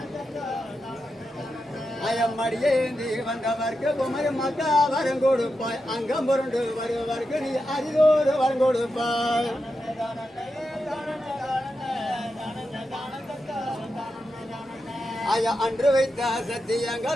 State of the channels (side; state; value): both; normal; correlation 0.88